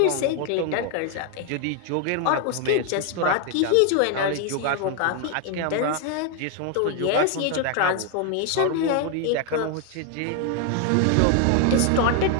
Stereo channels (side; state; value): both; different; correlation 0.01